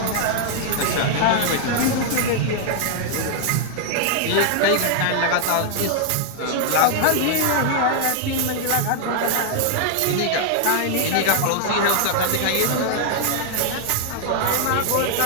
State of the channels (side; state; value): both; different; correlation 0.00